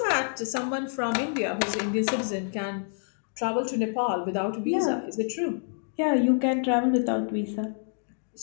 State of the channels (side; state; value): right; silent; digital silence